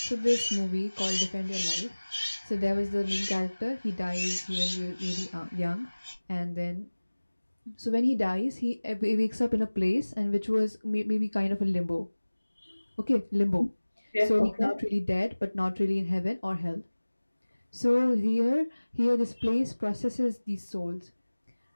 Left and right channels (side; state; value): both; inverted; correlation -1.00